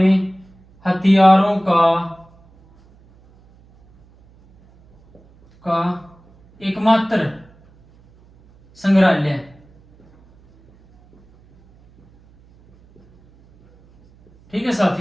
हथियारों का एकमात्र संग्रहालय, ठीक है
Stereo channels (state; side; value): noise; right; hum, 30 dB below the sound